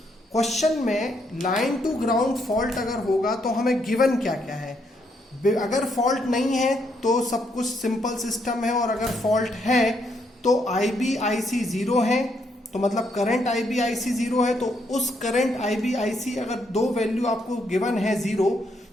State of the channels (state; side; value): normal; both; correlation 0.75